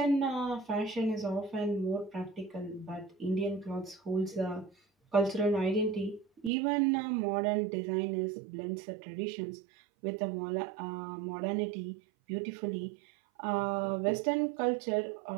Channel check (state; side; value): drops out; left; at 6.5 s